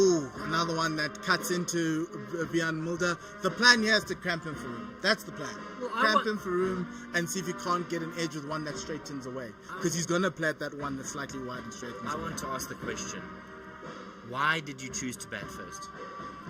another one that cuts into Björn Mulder. The plan here is to cramp him for room. That's the plan. Cramp him for room and see if you can't get an edge with one that straightens away. Because he's going to play at that one that's slightly wide and straightens away. I want to ask the question, why did you choose to bat first?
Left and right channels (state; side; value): identical; both; correlation 1.00